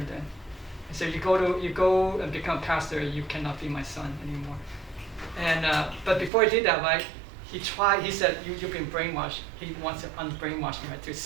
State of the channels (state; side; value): drops out; left; at 6.3 s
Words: then. He said, "You go and become pastor. You cannot be my son anymore." And but before he did that, right, he tried. He said, "You've been brainwashed." He wants to unbrainwash me, right, to